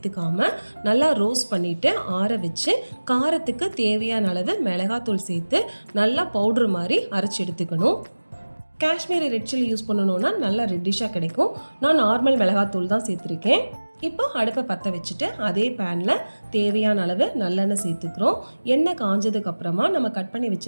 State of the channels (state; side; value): inverted; both; correlation -1.00